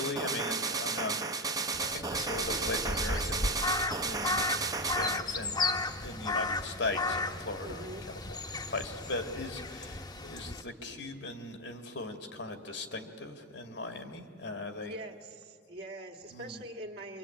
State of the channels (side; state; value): both; normal; correlation 0.09